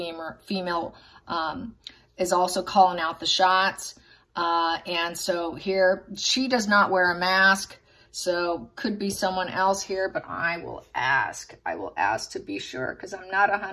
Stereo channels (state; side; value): identical; both; correlation 1.00